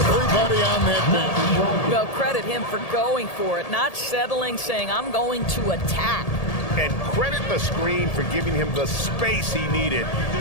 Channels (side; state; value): right; late; 1.8 ms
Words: on that bench. Well, credit him for going for it, not settling, saying, I'm going to attack. and credit the screen for giving him the space he needed